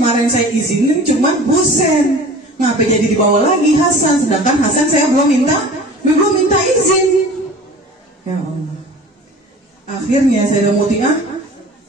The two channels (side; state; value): both; normal; correlation 0.41